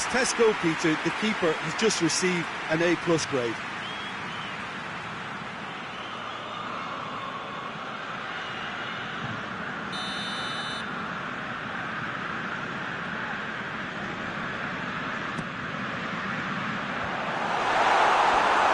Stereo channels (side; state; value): both; identical; correlation 1.00